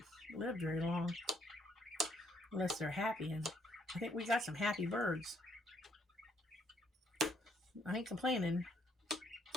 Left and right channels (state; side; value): normal; both; correlation 0.69